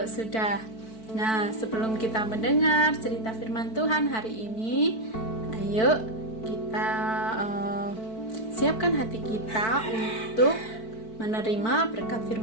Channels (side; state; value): right; late; 4.5 ms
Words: sudah. Nah, sebelum kita mendengar cerita firman Tuhan hari ini, ayo kita siapkan hati kita untuk menerima berkat